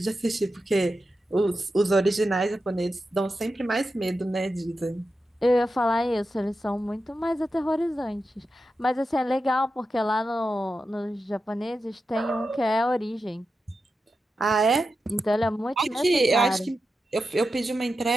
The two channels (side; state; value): both; normal; correlation 0.90